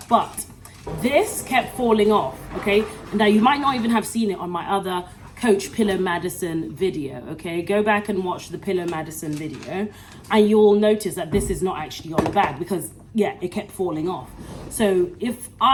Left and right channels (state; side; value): identical; both; correlation 1.00